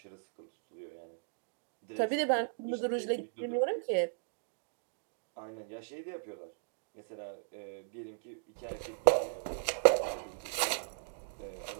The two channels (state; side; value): silent; left; digital silence